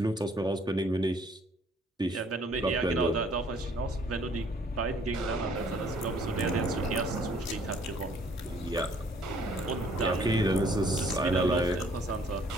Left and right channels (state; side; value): normal; both; correlation 0.60